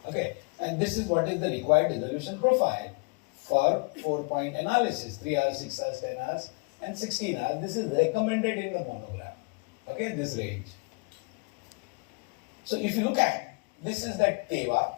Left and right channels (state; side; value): quieter; right; 30.7 dB